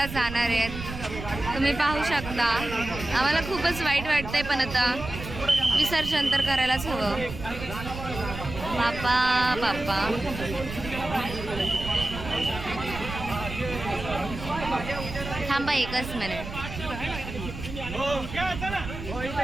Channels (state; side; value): noise; right; rumble, 9 dB below the sound